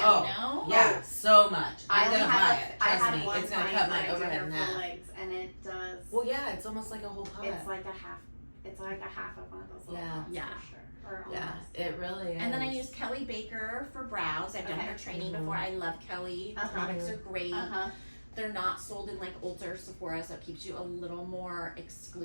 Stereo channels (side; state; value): both; inverted; correlation -1.00